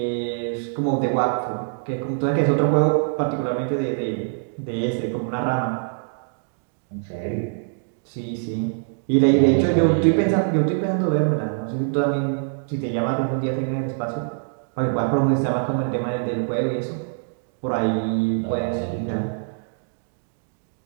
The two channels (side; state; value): left; silent; digital silence